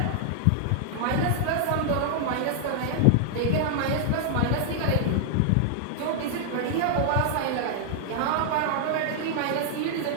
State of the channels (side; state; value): both; different; correlation -0.01